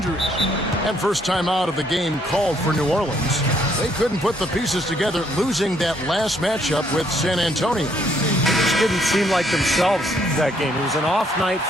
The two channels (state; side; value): normal; both; correlation 0.69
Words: And first time out of the game called for New Orleans. They couldn't put the pieces together, losing that last matchup with San Antonio. Just didn't seem like themselves that game. It was an off night